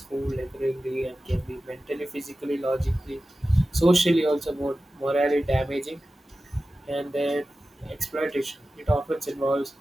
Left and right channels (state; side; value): normal; both; correlation 0.94